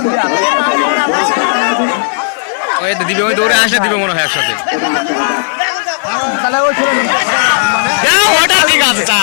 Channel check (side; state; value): right; silent; digital silence